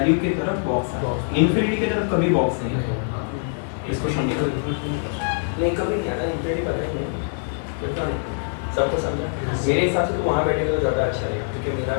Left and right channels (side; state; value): right; silent; digital silence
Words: की तरफ बॉक्स है, इन्फिनिटी की तरफ कभी बॉक्स नहीं है। इसको समझो नहीं, कभी नहीं आता इन्फिनिटी, पता ही नहीं है सबको समझा। मेरे हिसाब से तो वहाँ बैठेगा तो ज़्यादा अच्छा रहेगा, क्योंकि मेरा